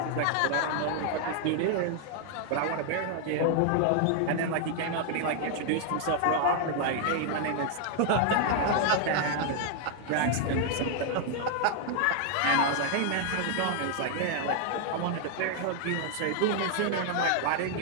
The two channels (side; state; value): both; different; correlation 0.00